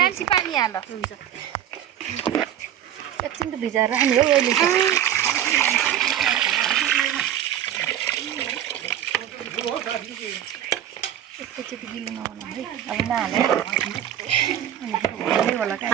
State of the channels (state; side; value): quieter; left; 10.9 dB